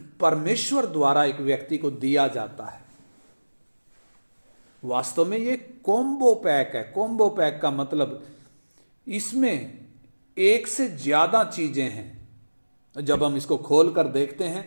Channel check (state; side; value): inverted; both; correlation -1.00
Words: परमेश्वर द्वारा एक व्यक्ति को दिया जाता है। वास्तव में ये कॉम्बो पैक है। कॉम्बो पैक का मतलब इसमें एक से ज्यादा चीजें हैं। जब हम इसको खोल कर देखते